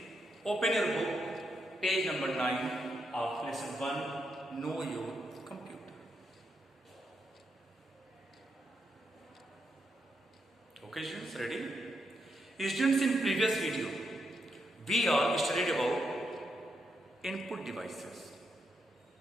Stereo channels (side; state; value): both; normal; correlation 0.82